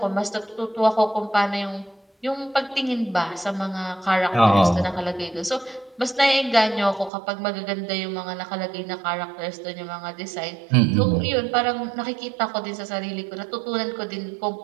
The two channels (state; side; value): drops out; left; at 7.1 s